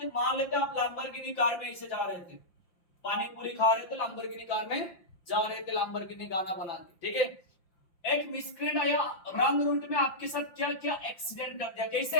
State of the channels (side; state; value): right; late; 5.7 ms